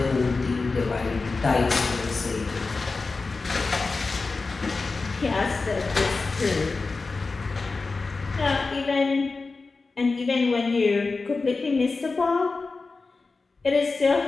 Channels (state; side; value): quieter; right; 4.0 dB